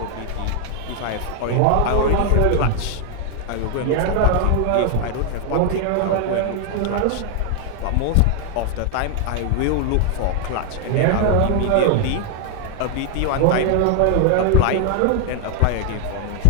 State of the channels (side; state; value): both; different; correlation 0.00